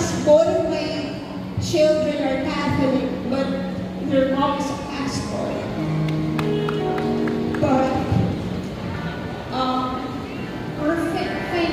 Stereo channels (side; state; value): both; identical; correlation 1.00